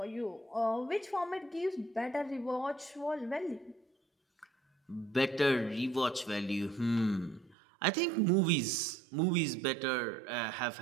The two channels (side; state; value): left; drops out; at 7.6 s